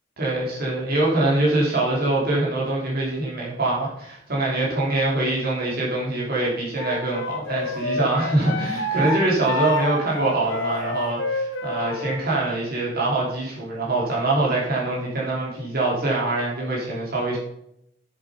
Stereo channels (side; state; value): both; normal; correlation 0.32